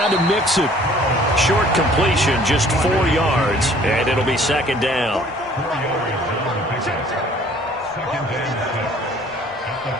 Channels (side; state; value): both; normal; correlation 0.55